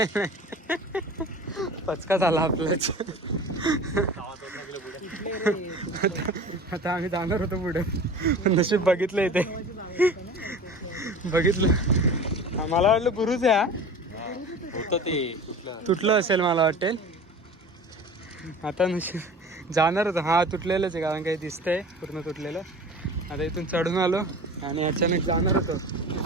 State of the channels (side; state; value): both; normal; correlation 0.38